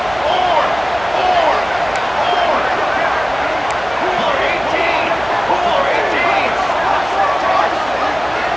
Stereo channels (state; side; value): noise; right; hum, 18 dB below the sound